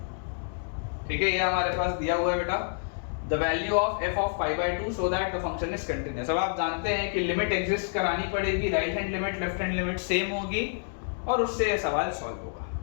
ठीक है, ये हमारे पास दिया हुआ है बेटा the value of f of pi by 2 so that the function is continuous। अब आप जानते हैं कि लिमिट एग्जिस्ट करानी पड़ेगी, right hand limit left hand limit same होगी, और उससे ये सवाल सॉल्व होगा।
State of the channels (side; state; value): right; silent; digital silence